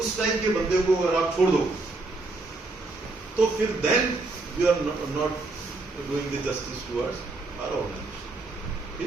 उस टाइप के बंदे को अगर आप छोड़ दो, तो फिर then you are not doing the justice towards our organisation,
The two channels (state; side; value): quieter; left; 3.4 dB